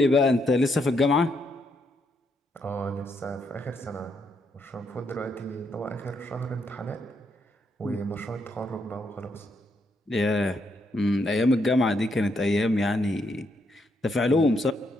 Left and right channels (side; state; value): both; normal; correlation 0.77